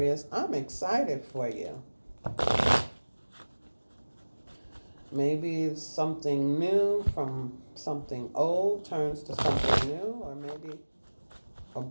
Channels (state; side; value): inverted; both; correlation -1.00